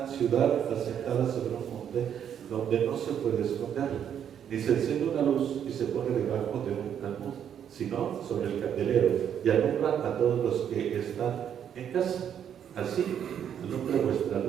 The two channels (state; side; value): quieter; left; 9.0 dB